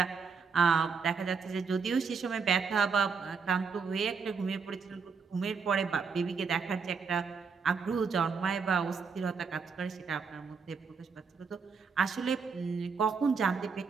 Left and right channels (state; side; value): quieter; left; 5.5 dB